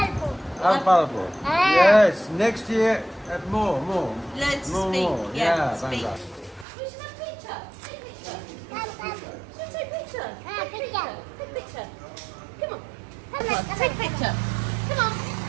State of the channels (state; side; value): drops out; left; at 6.7 s